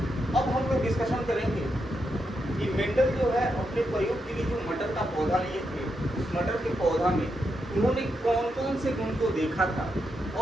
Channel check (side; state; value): both; normal; correlation 0.84